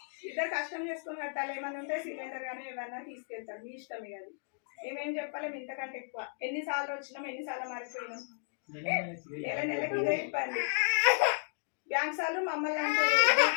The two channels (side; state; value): right; silent; digital silence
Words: ఇద్దరు కష్టం చేసుకొని కట్టాలి. ఏమైనా ఉంటే సిలిండర్ కానీ ఏమైనా తీసుకెళ్తారు. మీ ఇష్టమే అది. మేమేం చెప్పలేము ఇంతకంటే ఎక్కువ. ఎన్నిసార్లు వచ్చినాం ఎన్నిసార్లు మారిపోయినాం. నెలకి ఇదే ఇబ్బంది. బ్యాంక్ సార్లు మమ్మల్ని అంటే